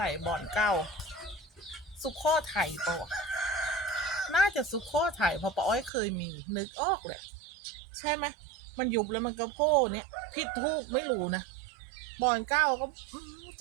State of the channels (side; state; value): left; drops out; at 5.9 s